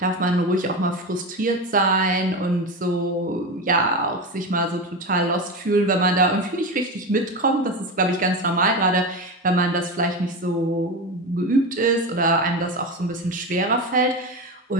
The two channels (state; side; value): normal; both; correlation 0.21